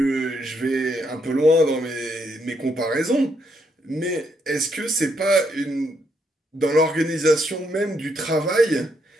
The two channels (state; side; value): normal; both; correlation 0.76